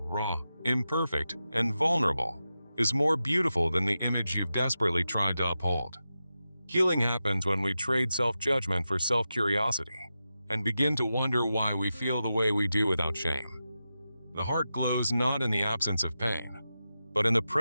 imperfect, and vulnerable, is more beautiful than the image you've desperately tried to uphold? Healing happens when we trade self-judgment for self-curiosity and begin to wonder why we feel the way we do without shame. The heart glows not in the absence of pain, but in the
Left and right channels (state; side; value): inverted; both; correlation -0.91